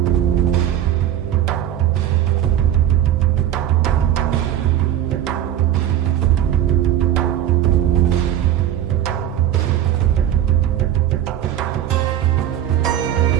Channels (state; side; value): quieter; left; 11.2 dB